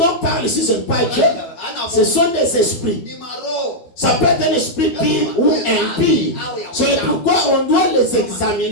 parlent ici, ce n'est pas Dieu, ce sont des esprits. Ça peut être un esprit pire ou impie. C'est pourquoi on doit les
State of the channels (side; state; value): right; late; 12 ms